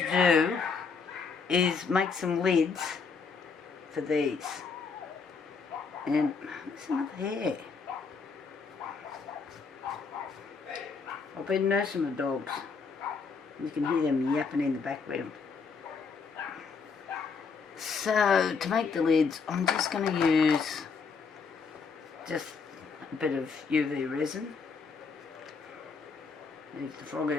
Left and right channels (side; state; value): right; quieter; 5.1 dB